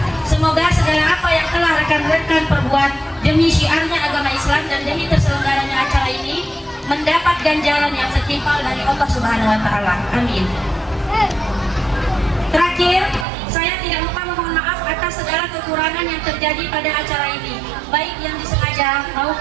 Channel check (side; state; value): left; drops out; at 13.2 s